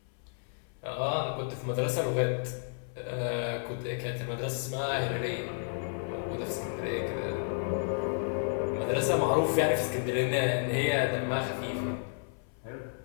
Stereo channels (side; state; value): right; silent; 57 dB below the other